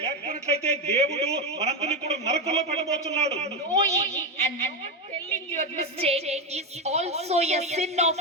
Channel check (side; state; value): both; normal; correlation 0.10